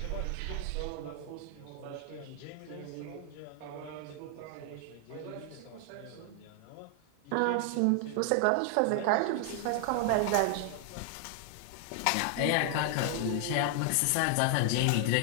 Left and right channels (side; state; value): both; different; correlation 0.00